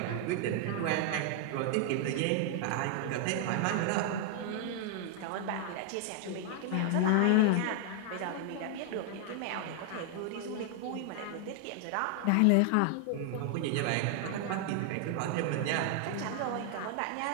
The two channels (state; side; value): different; both; correlation 0.00